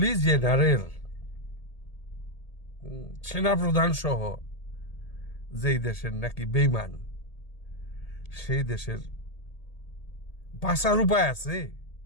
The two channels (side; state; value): right; late; 1.8 ms